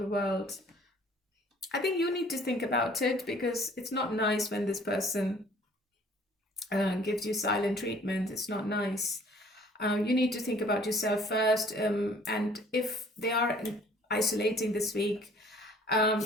world. I think you need to think about it, because it's not nice when this person gives you silent treatment. It's not nice. You need to think about yourself first, and if they are isolating this week,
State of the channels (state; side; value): normal; both; correlation 0.55